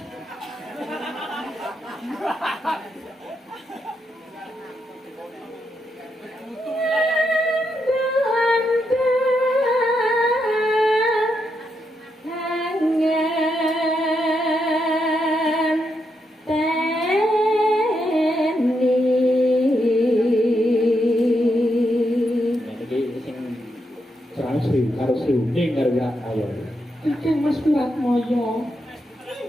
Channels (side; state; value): both; normal; correlation 0.82